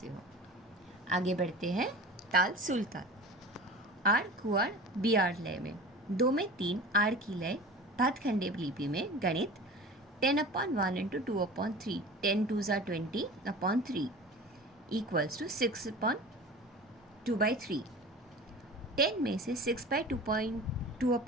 हो। आगे बढ़ते हैं। ताल सुलताल आड़ कुआड़ बियाड़ लय में। 2 में 3 आड़ की लय भातखंडे लिपि में। गणित 10/1 × 2/3। 10 2s are 20/3 equals to 6/2/3। 10 में से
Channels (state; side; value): normal; both; correlation 0.36